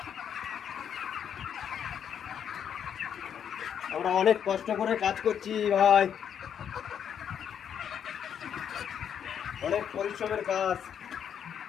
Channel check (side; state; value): right; quieter; 8.4 dB